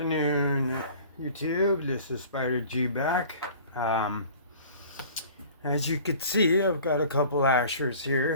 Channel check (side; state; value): both; inverted; correlation -0.46